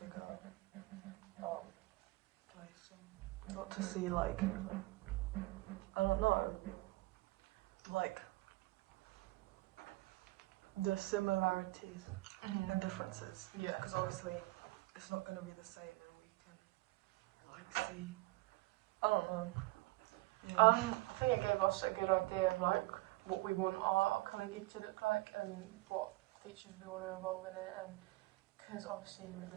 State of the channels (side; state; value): left; quieter; 20.8 dB